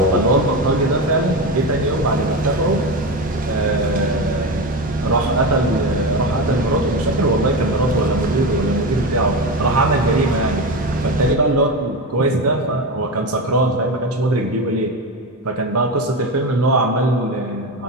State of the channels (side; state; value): both; normal; correlation 0.20